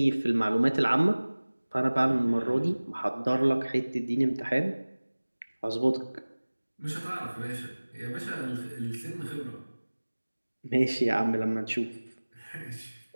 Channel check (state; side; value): inverted; both; correlation -1.00